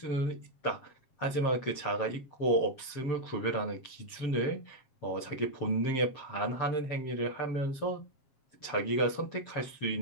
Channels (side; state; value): right; late; 7.4 ms